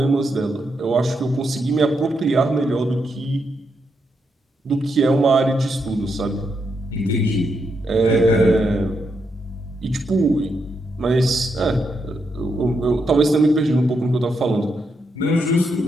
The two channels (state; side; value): normal; both; correlation 0.81